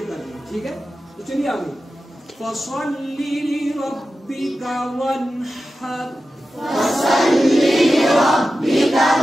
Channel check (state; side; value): normal; both; correlation 0.93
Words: کر دیں. ٹھیک ہے تو چلیے آگے. فصلی لربک وانحر